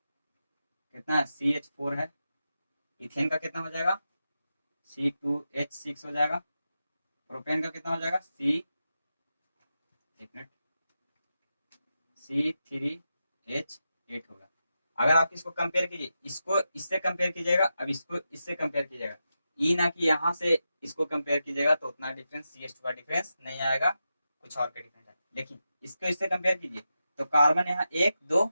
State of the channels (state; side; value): inverted; both; correlation -0.89